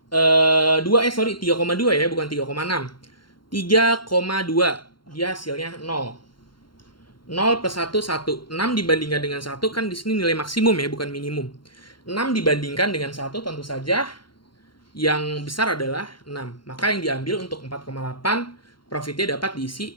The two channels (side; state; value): right; late; 0.72 ms